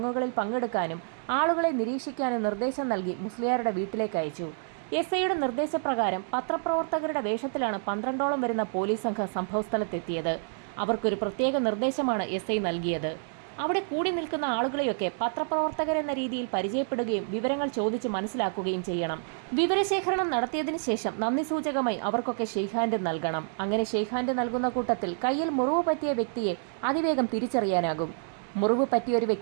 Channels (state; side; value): silent; left; digital silence